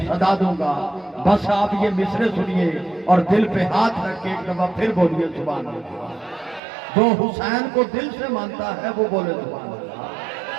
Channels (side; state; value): left; drops out; at 6.6 s